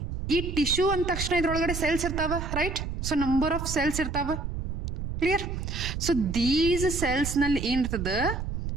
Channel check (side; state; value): right; noise; rumble, 5 dB below the sound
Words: ಈ ಟಿಶ್ಯೂ ಅಂದ ತಕ್ಷಣ ಇದ್ರೊಳಗಡೆ ಸೆಲ್ಸ್ ಇರ್ತಾವ, right? So number of cells ಇರ್ತಾವ. ಕ್ಲಿಯರ್? ಸೊ ದೀಸ್ ಸೆಲ್ಸ್ ನಲ್ಲಿ ಏನಿರ್ತದ,